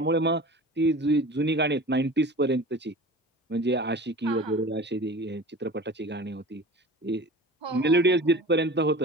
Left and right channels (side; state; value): both; normal; correlation 0.38